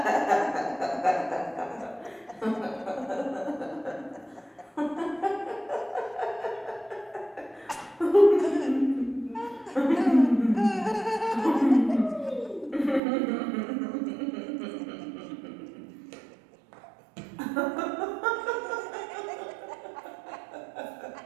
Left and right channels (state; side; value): drops out; left; at 13.0 s